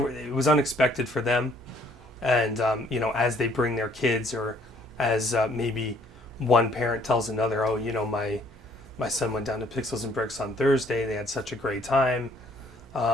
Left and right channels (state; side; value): normal; both; correlation 0.63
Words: was unexpected for them, and as they bring their kids, or as maybe one parent tells another, oh, my son went down to Pixels and Bricks on Thursday. They had such a great time.